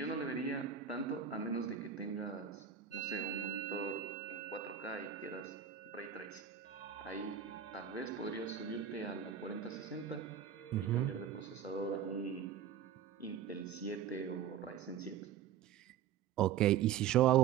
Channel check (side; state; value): left; quieter; 8.5 dB